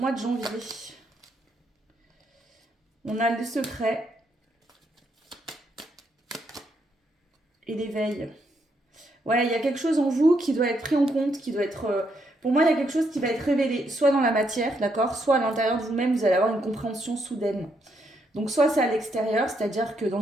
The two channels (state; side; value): normal; both; correlation 0.76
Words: de janvier. On a le secret et l'éveil. Ouais, il y a quelque chose en vous qui doit être pris en compte, qui doit être... pour moi, il y a quelque chose qui va être révélé, soit dans la matière, d'accord, soit à l'intérieur de vous-même, vous allez avoir une compréhension soudaine. Donc, soit c'est à l'extérieur, c'est-à-dire que dans